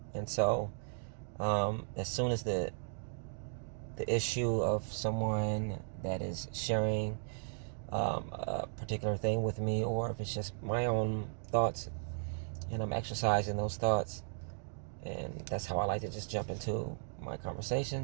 And so, as soon as the issue of someone that is sharing a particular thing with me, or if it's just my own thoughts and I'm exercising those thoughts. And that's how I like to just jump into my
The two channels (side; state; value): left; silent; digital silence